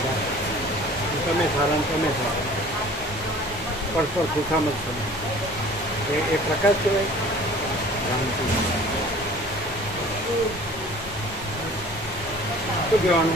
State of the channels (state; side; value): normal; both; correlation 0.47